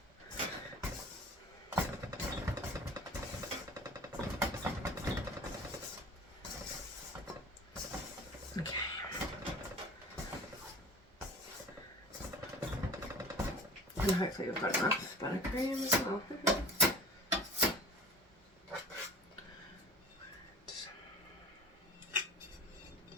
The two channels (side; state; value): both; normal; correlation 0.42